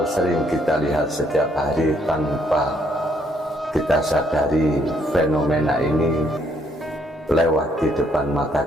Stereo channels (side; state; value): both; normal; correlation 0.70